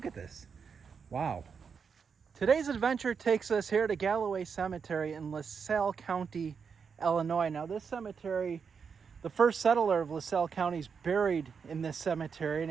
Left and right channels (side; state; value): left; quieter; 6.1 dB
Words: at this. Wow. Today's adventure takes us here to Galloway Cemetery in LaSalle County, Illinois. Now this cemetery, the first settler of LaSalle County is buried in this cemetery,